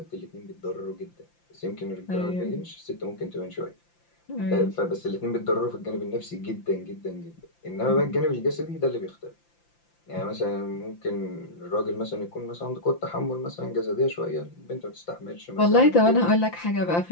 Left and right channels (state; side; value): late; right; 5.8 ms